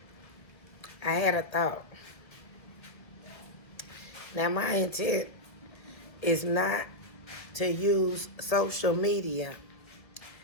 I had a thought. Now, my intent is not to use social media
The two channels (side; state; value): right; late; 1.9 ms